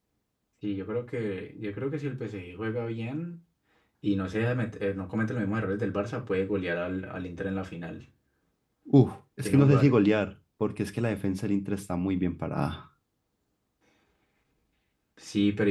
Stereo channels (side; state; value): both; identical; correlation 1.00